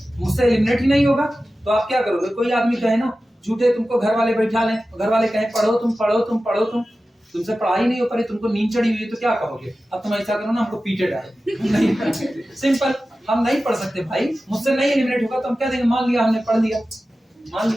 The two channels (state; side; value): normal; both; correlation 0.94